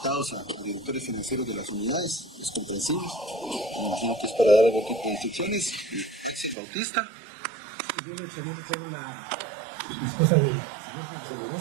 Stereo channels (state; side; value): drops out; left; at 6.6 s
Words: a directores financieros de las unidades, es comprensible, me imagino que es para dar algún tipo de instrucciones.